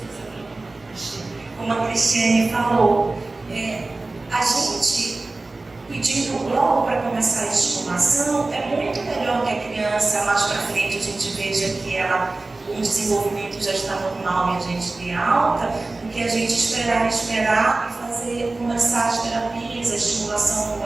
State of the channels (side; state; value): left; quieter; 3.2 dB